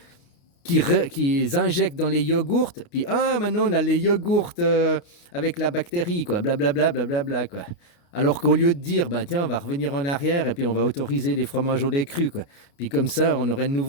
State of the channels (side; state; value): right; late; 29 ms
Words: qui injectent dans les yogourts, puis maintenant on a les yogourts avec la bactérie, quoi, blablabla, blablabla, quoi. Alors qu'au lieu de dire, bah tiens, on va revenir en arrière et puis on va autoriser les fromages au lait cru, quoi. Puis comme ça, on aurait de